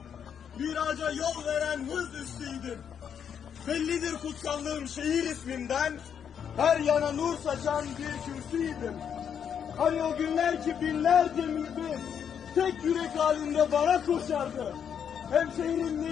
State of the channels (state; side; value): quieter; right; 8.0 dB